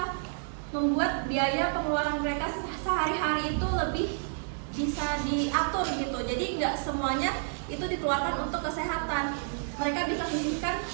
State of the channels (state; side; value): silent; left; digital silence